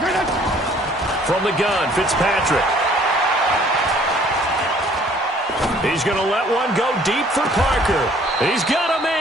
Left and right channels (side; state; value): both; normal; correlation 0.57